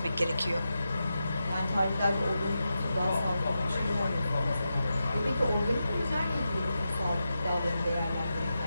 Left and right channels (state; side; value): inverted; both; correlation -0.89